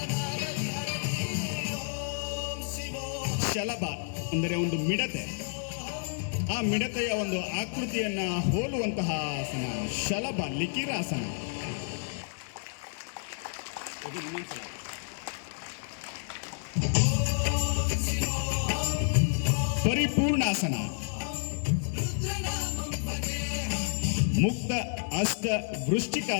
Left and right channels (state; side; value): silent; right; 57 dB below the other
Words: ಶಲಭ ಅಂದರೆ ಒಂದು ಮಿಡತೆ, ಆ ಮಿಡತೆಯ ಒಂದು ಆಕೃತಿಯನ್ನ ಹೋಲುವಂತಹ ಆಸನ ಶಲಭ ಲಿಕಿರಾಸನ. ಪರಿಪೂರ್ಣಾಸನ, ಮುಕ್ತ ಅಷ್ಟ